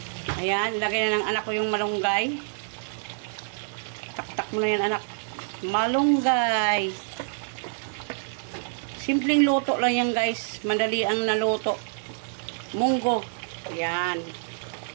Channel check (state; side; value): silent; left; digital silence